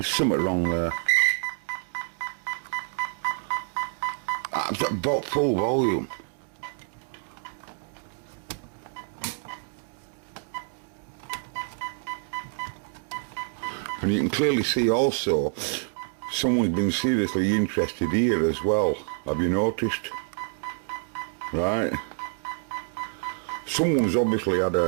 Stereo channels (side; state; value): left; silent; digital silence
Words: something wrong there. I've got full volume. And you can clearly see also someone's been seriously interested here as well. Have you noticed? Right. Someone's obviously had